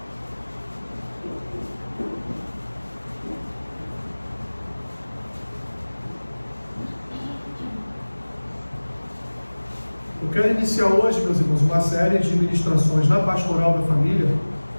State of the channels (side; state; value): both; inverted; correlation -1.00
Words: Eu quero iniciar hoje, meus irmãos, uma série de ministrações na Pastoral da Família,